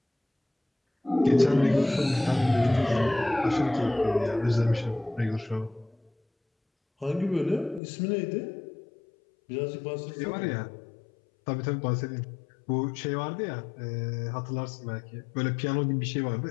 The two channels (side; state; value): right; drops out; at 7.8 s